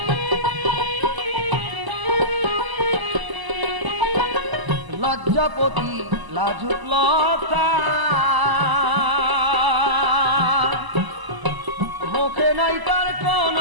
লজ্জাপতি লাজুক লতা মুখে নাই তার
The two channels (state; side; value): late; left; 1.0 ms